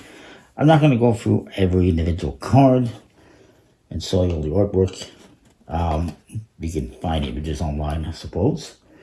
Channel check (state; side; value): identical; both; correlation 1.00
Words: I'm not going to go through every individual card and show you all the artwork. You can find images online, I suppose.